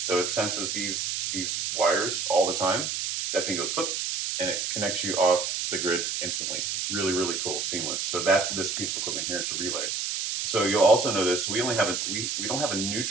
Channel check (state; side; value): noise; right; hiss, 1 dB below the sound